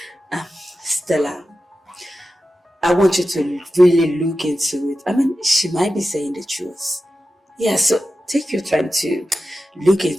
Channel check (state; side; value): normal; both; correlation 0.92